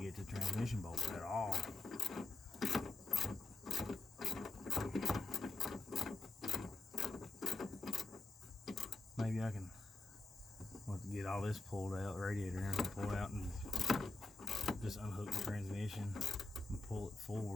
the transmission bolt at all. Maybe I can get all this pulled out, radiator and everything pulled out, and just unhook the transmission and pull it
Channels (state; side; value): quieter; right; 3.7 dB